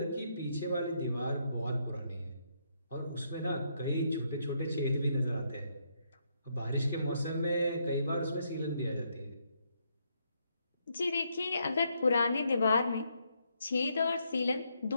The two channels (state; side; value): inverted; both; correlation -0.76